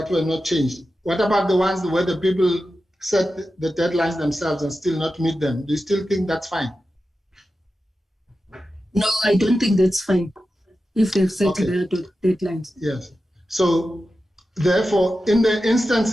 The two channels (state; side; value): normal; both; correlation 0.92